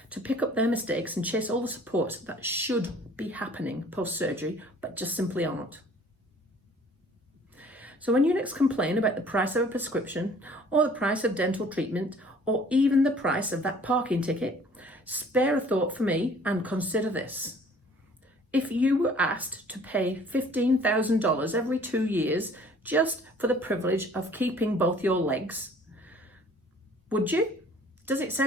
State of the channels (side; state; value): both; normal; correlation 0.53